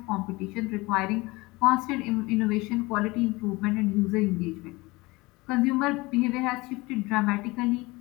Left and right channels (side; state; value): right; quieter; 22.7 dB